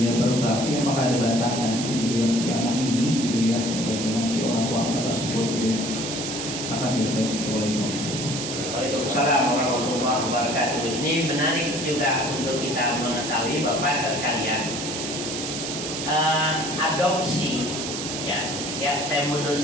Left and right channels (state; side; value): noise; right; hiss, 5 dB below the sound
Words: berbakti apakah ada batasan gitu ya, si anak ini gitu ya dengan si orang tua tersebut gitu ya. Makasih Ustaz. Assalamualaikum. Waalaikumsalam warahmatullahi wabarakatuh. Ini menarik juga untuk kita mengetahui Bapak sekalian. Adopsi, ya saya mundur